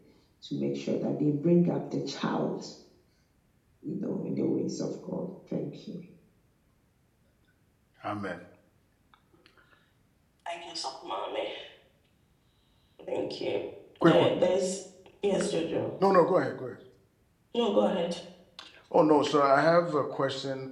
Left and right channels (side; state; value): both; identical; correlation 1.00